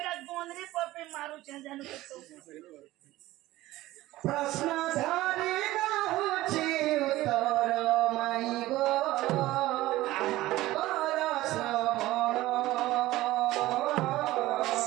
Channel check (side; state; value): left; quieter; 16.9 dB